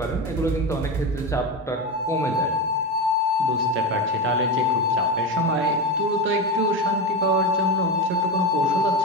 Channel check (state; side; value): normal; both; correlation 0.18